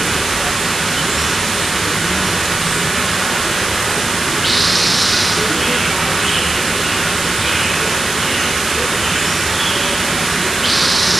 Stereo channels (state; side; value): noise; right; hiss, 6 dB below the sound